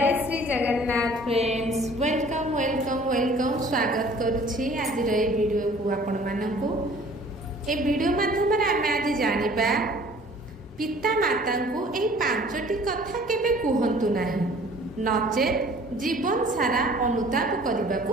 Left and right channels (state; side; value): normal; both; correlation 0.52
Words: Shri Jagannath friends welcome welcome welcome स्वागत करुछि आज वीडियो को आपण मानकु ए वीडियो माध्यम आम आज जानिबा पिता माता को ए पांचटी कथा केबे कहंतु नाही नचेत जीवन सारा अनुताप करने